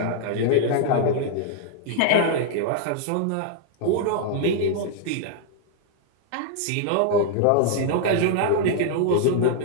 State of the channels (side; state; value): both; different; correlation 0.00